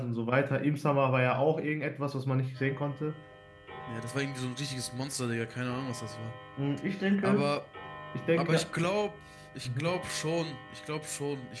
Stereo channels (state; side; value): identical; both; correlation 1.00